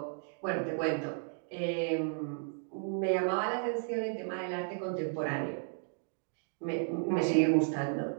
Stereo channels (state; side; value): silent; left; 55 dB below the other